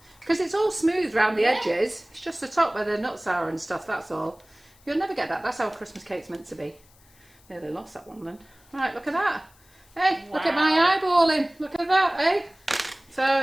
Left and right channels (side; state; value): left; noise; hiss, 29 dB below the sound